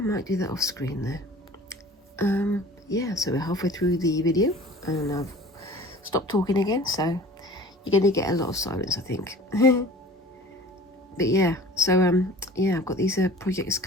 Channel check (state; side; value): normal; both; correlation 0.44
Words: do that off screen there. Yeah, so we're halfway through the video and I've stopped talking again, so you're going to get a lot of silence, I think. But yeah, so yeah, I've got these projects